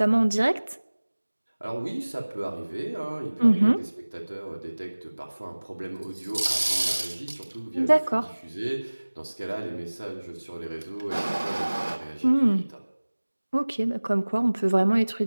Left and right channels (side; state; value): both; inverted; correlation -1.00